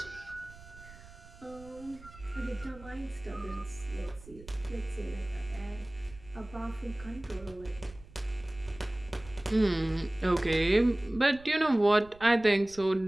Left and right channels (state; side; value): noise; right; rumble, 20 dB below the sound